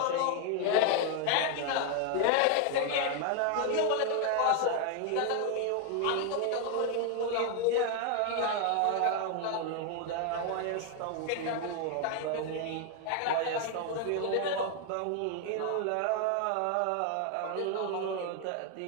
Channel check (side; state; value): both; different; correlation 0.01